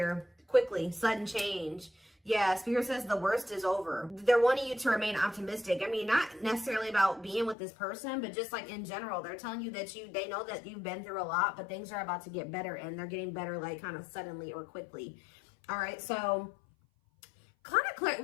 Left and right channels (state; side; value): drops out; right; at 7.6 s